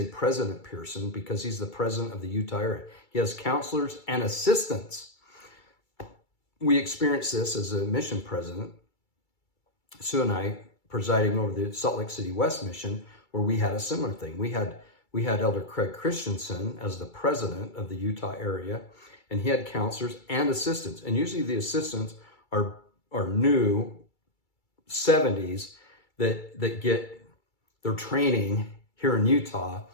President Pearson, because he's the president of the Utah area. He has counselors and assistants. We experienced this as a mission president, Sue and I, presiding over the Salt Lake City West mission, where we had a similar thing. We had Elder Craig Christensen as the president of the Utah area, and he had counselors and assistants. And usually the assistants are new 70s that get their training here in Utah,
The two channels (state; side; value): late; right; 2.3 ms